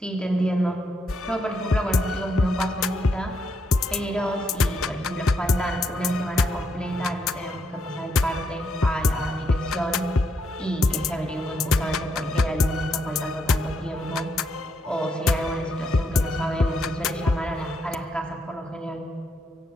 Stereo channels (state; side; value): normal; both; correlation 0.77